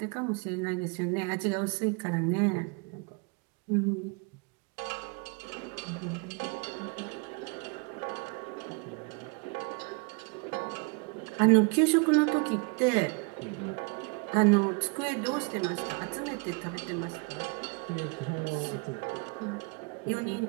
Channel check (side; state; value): left; quieter; 32.4 dB